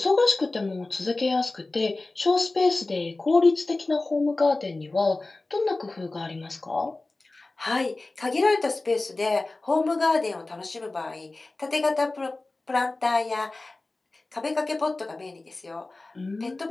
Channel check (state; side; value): quieter; right; 3.2 dB